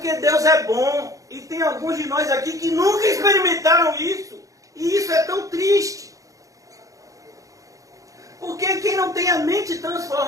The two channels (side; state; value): left; late; 0.16 ms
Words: Deus é bom. E tem alguns de nós aqui que nunca experimentaram isso. E isso é tão triste. Porque quem não tem a mente